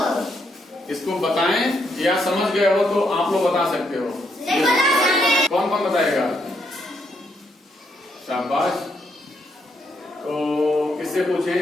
इसको बताएं या समझ गए हो तो आप लोग बता सकते हो। कौन कौन बताएगा? शाबाश। तो किससे पूछें?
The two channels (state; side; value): normal; both; correlation 0.76